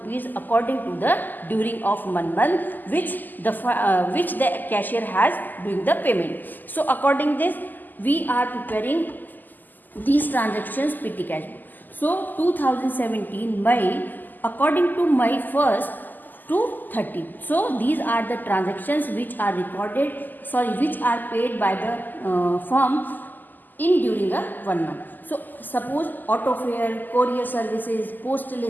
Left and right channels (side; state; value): right; late; 0.086 ms